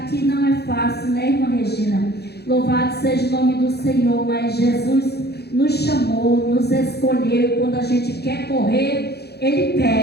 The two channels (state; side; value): late; right; 0.48 ms